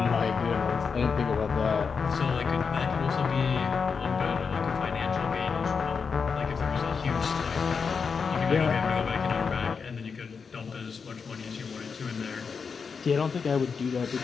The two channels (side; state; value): right; quieter; 5.6 dB